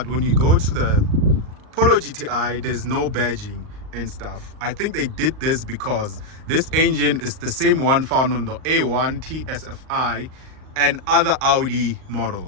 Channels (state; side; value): late; left; 38 ms